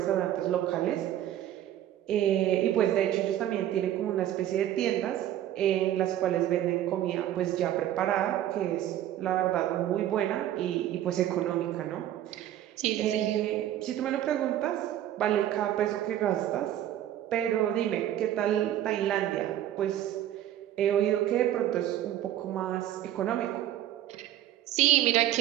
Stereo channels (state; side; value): quieter; left; 12.2 dB